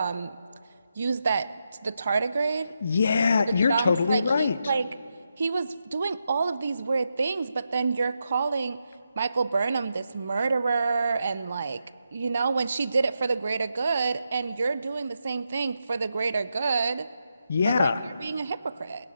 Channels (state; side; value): inverted; both; correlation -0.85